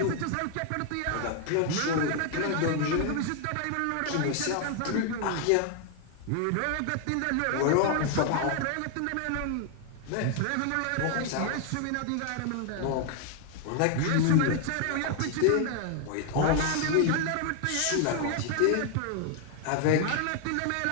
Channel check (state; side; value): different; both; correlation 0.00